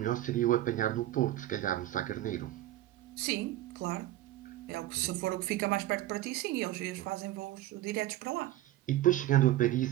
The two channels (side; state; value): left; quieter; 14.8 dB